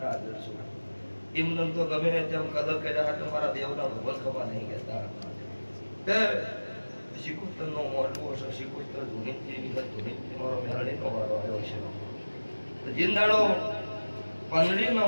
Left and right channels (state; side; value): inverted; both; correlation -1.00